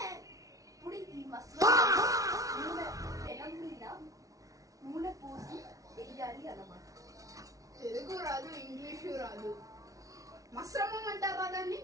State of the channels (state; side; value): late; left; 0.17 ms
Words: ఇప్పుడు ఈ మసాలా పెనం మీద నూనె పోసి వేయాలి అన్నమాట. తెలుగు రాదు, ఇంగ్లీషు రాదు. మిశ్రమం అంటారా దాన్ని?